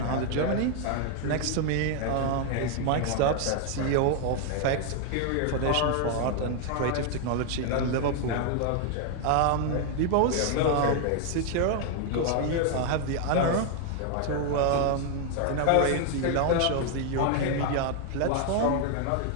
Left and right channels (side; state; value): both; different; correlation 0.00